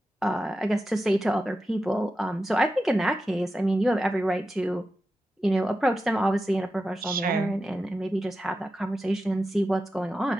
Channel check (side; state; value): both; normal; correlation 0.91